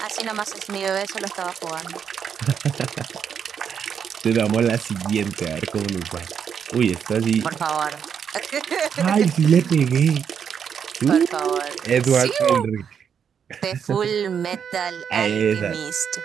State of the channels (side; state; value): left; quieter; 7.6 dB